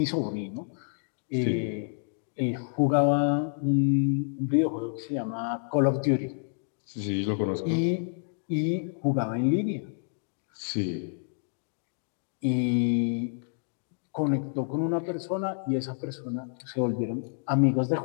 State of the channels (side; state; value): right; silent; digital silence